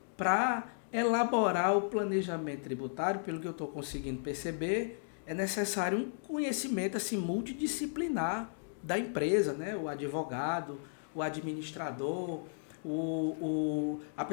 para elaborar o planejamento tributário, pelo que eu estou conseguindo perceber, é necessário um conhecimento assim, multidisciplinar da empresa, né? O advogado, o administrador, a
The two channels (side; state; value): right; silent; digital silence